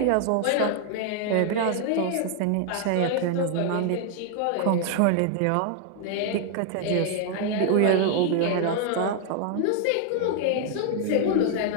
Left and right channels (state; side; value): different; both; correlation 0.00